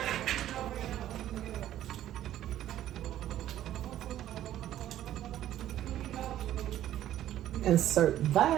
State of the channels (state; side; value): quieter; left; 12.4 dB